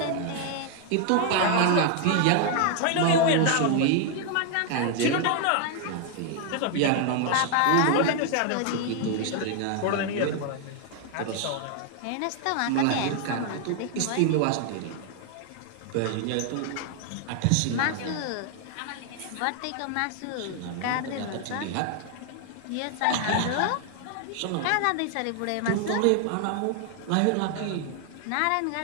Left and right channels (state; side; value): different; both; correlation 0.00